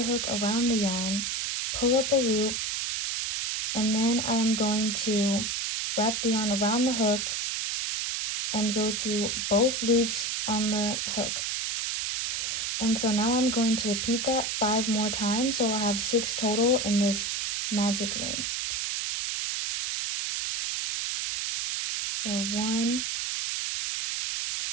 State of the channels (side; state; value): right; noise; hiss, 1 dB below the sound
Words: hook around the yarn, pull up a loop, and then I am going to wrap the yarn around the hook and go through both loops on the hook. And so now I'm going to repeat that 5 more times, so I'll have 6 total in this magic ring. So 1,